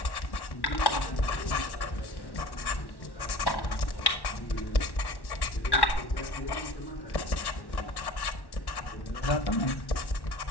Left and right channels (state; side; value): late; right; 1.1 ms